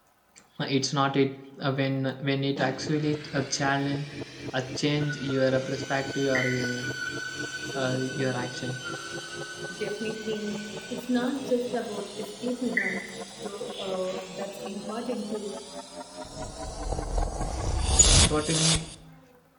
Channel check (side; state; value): both; identical; correlation 1.00